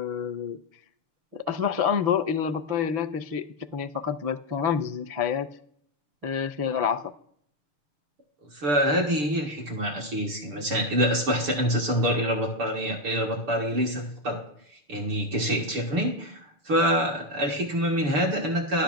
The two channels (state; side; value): late; left; 6.7 ms